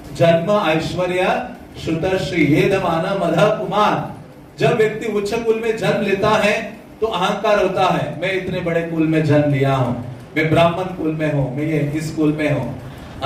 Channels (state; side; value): identical; both; correlation 1.00